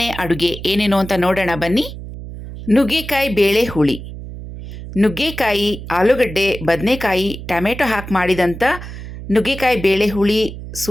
ಅಡುಗೆ ಏನೇನು ಅಂತ ನೋಡೋಣ ಬನ್ನಿ. ನುಗ್ಗೆಕಾಯಿ ಬೇಳೆ ಹುಳಿ. ನುಗ್ಗೆಕಾಯಿ, ಆಲೂಗಡ್ಡೆ, ಬದನೆಕಾಯಿ, ಟೊಮೆಟೊ ಹಾಕಿ ಮಾಡಿದಂಥ ನುಗ್ಗೆಕಾಯಿ ಬೇಳೆ ಹುಳಿ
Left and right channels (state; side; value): noise; right; hum, 11 dB below the sound